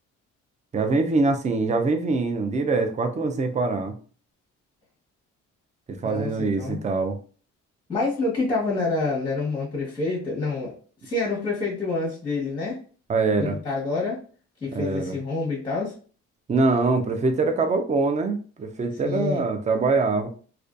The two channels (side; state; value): both; normal; correlation 0.50